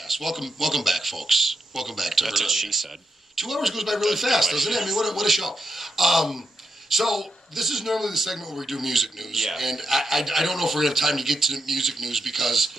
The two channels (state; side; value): normal; both; correlation 0.84